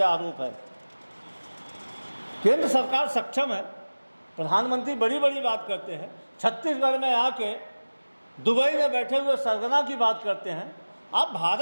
आरोप है। केंद्र सरकार सक्षम है। प्रधानमंत्री बड़ी बड़ी बात करते हैं, छत्तीसगढ़ में आके दुबई में बैठे हुए सरगना की बात करते हैं। आप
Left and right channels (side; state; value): both; inverted; correlation -1.00